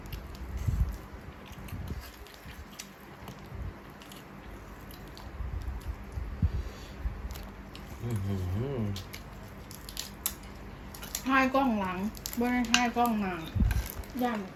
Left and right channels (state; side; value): identical; both; correlation 1.00